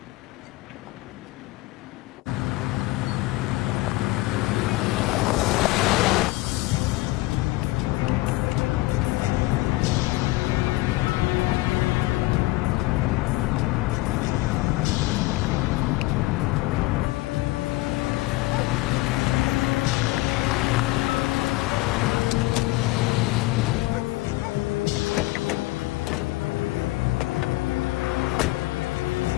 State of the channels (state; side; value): quieter; right; 20.1 dB